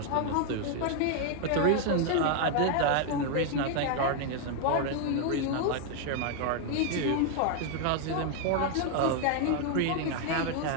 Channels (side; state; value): both; different; correlation 0.00